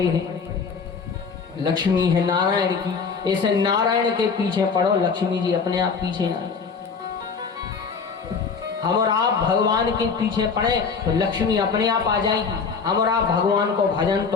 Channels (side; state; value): right; quieter; 5.4 dB